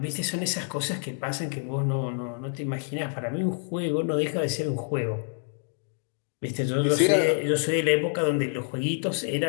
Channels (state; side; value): silent; right; 60 dB below the other